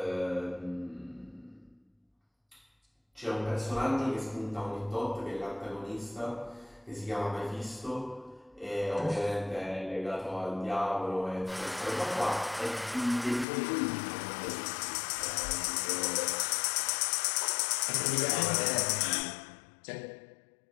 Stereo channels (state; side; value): drops out; right; at 13.5 s